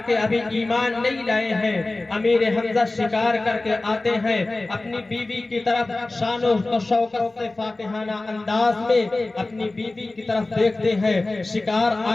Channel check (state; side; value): quieter; right; 3.0 dB